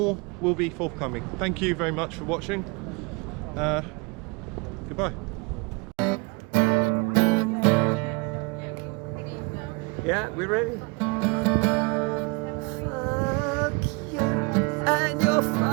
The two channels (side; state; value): left; quieter; 30.4 dB